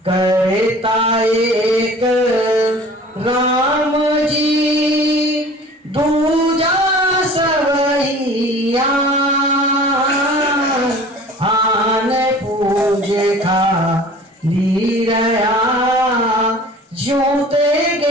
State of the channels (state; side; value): normal; both; correlation 0.45